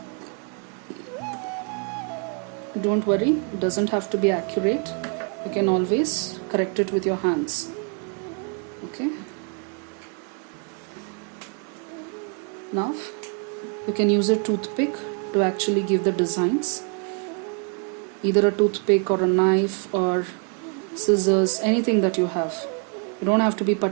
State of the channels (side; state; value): left; quieter; 38.4 dB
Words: don't worry, it doesn't have to be accurate. You can always correct it with your hands. Okay, now you can use a toothpick to actually give the designs. Either a toothpick or a knife or scissors, anything that you have. You don't have to be